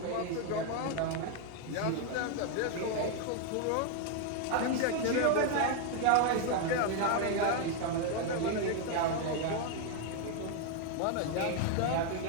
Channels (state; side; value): different; both; correlation 0.01